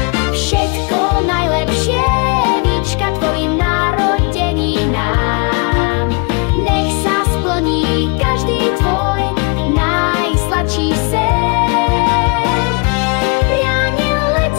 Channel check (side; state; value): right; quieter; 31.0 dB